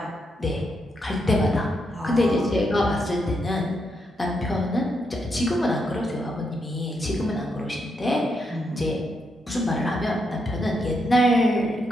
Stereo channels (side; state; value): both; normal; correlation 0.81